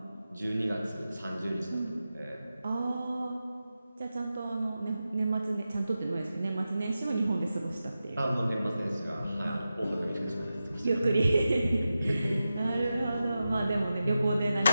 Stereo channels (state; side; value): inverted; both; correlation -0.92